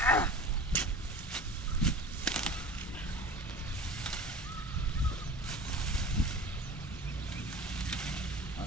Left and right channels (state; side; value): normal; both; correlation 0.38